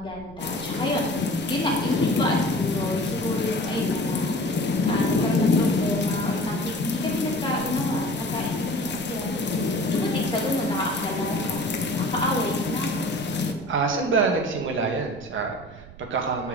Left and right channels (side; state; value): right; noise; rumble, 18 dB below the sound